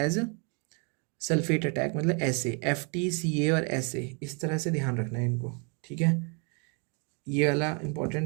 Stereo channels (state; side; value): quieter; left; 35.8 dB